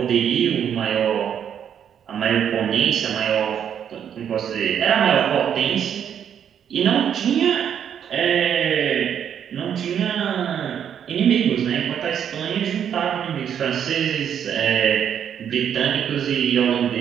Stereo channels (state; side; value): quieter; left; 8.7 dB